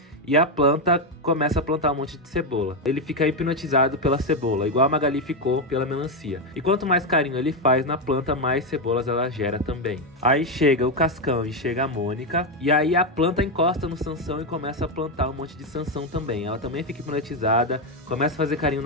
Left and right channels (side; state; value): both; normal; correlation 0.07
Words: E a planta começa a plantar um monte de cebola. Ele fica hipnotizado pela cebola, igual a Magali ficou pela melancia. E quanto mais carinho ele faz na planta, mais cebolas ela gera também. Aí chega o Cascão e chega a Mônica. E aí a planta encosta no Sansão e começa a plantar um monte de Sansão também. Ela também fica hipnotizada, começa a fazer carinho